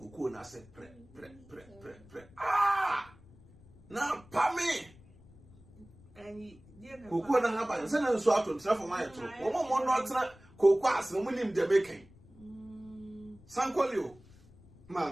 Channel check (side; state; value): left; noise; rumble, 24 dB below the sound